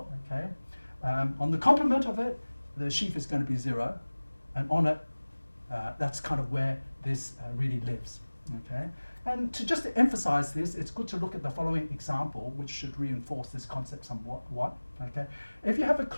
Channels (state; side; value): inverted; both; correlation -1.00